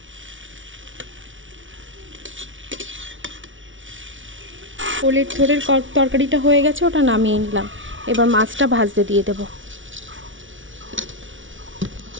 ওলের থোড়ের তরকারিটা হয়ে গেছে, ওটা নামিয়ে নিলাম। এবার মাছটা ভাজতে দিয়ে দেবো।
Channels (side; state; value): left; late; 0.56 ms